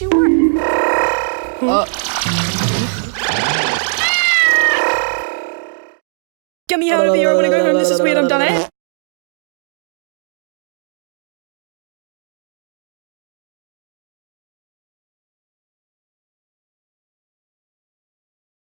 worked. Get me out of here, I wanna go home, this is weird, I'm done it.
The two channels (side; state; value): left; silent; digital silence